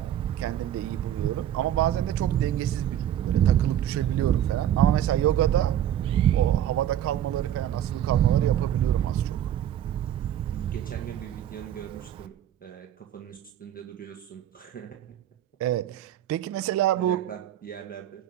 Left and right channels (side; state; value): left; quieter; 11.1 dB